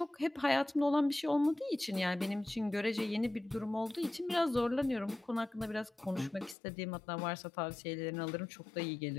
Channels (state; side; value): drops out; right; at 6.6 s